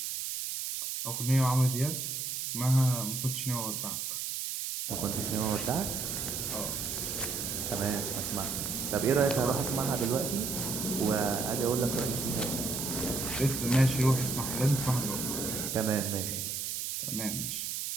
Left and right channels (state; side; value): noise; right; hiss, 3 dB below the sound